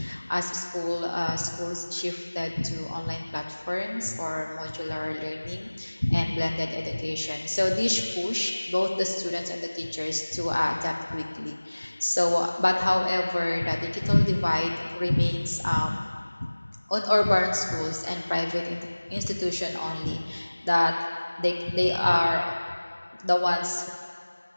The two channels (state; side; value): inverted; both; correlation -1.00